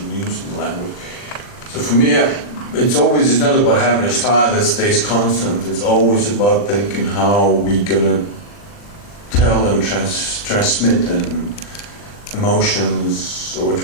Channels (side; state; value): right; late; 40 ms